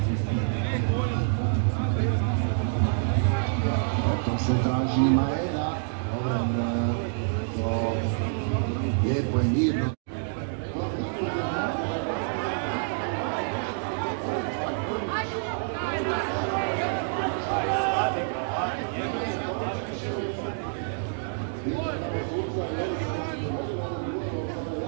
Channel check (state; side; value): silent; left; digital silence